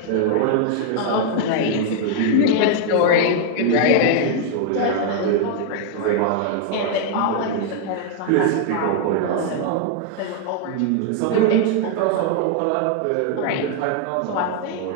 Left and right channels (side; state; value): both; different; correlation 0.00